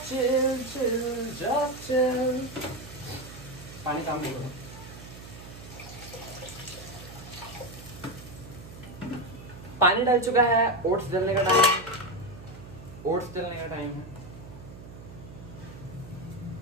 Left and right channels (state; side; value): noise; right; hum, 15 dB below the sound